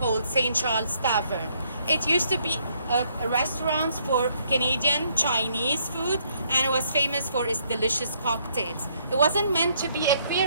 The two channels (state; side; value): inverted; both; correlation -0.69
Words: St. Charles Tavern. It used to be restaurants for Canadian Chinese food, and it was famous for its delicious cocktails. It wasn't meant to be a